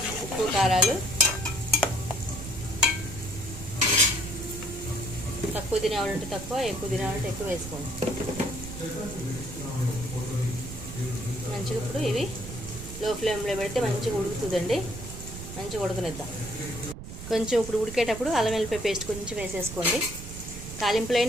ఉప్పు కారాలు తక్కువ తినేవాళ్ళంటే తక్కువ, ఎక్కువ తినేవాళ్ళంటే ఎక్కువ వేసుకోండి. మంచిగా ఇప్పుడు ఇవి లో ఫ్లేమ్లో పెడితే మంచిగా ఉడుకుతుందండి. మంచిగా ఉడకనిద్దాం. కొంచెం ఇప్పుడు ఉడికేటప్పుడు అల్లం వెల్లిపాయ పేస్ట్ కొంచెం వేసేసుకోండి.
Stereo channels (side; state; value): right; noise; rumble, 10 dB below the sound